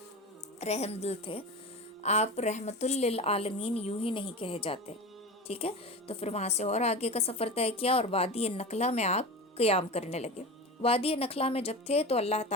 رحم دل تھے، آپ رحمت للعالمین یوں ہی نہیں کہے جاتے، ٹھیک ہے۔ تو پھر وہاں سے اور آگے کا سفر طے کیا، اور وادی نخلا میں آپ قیام کرنے لگے۔ وادی نخلا میں جب تھے تو اللہ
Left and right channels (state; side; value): normal; both; correlation 0.28